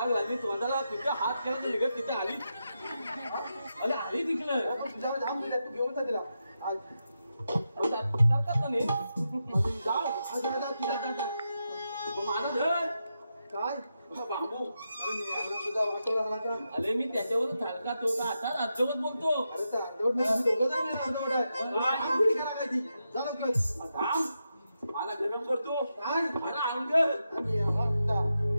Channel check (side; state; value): both; inverted; correlation -0.87